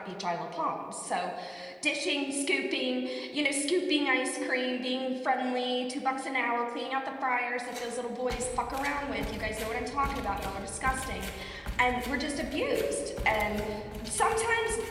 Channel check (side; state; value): both; identical; correlation 1.00